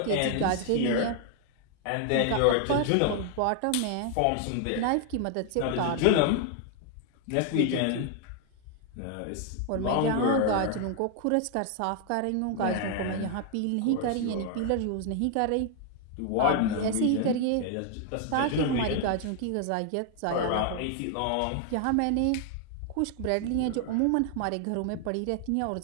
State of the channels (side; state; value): both; different; correlation 0.00